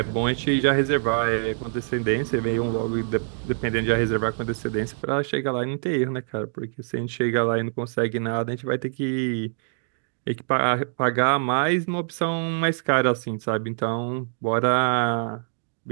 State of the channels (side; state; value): left; silent; digital silence